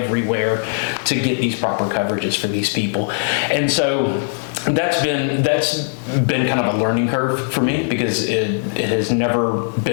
to get these proper coverages for these people. And so that's been kind of a learning curve for me, because it has never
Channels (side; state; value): right; silent; digital silence